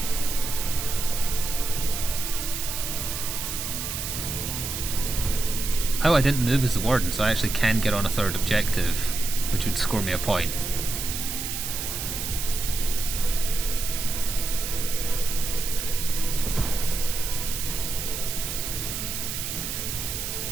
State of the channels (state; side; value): noise; right; hiss, 4 dB below the sound